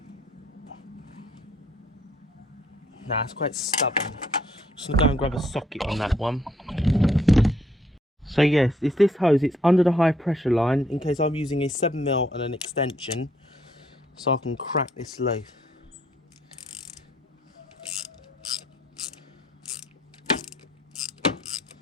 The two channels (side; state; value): both; normal; correlation 0.67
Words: Nah, it's quite stubborn. Just gonna go and grab a socket on that one. So yes, it's this hose. It's under the high pressure line in case I'm using a 7mm and an extension, so I can crack this loose.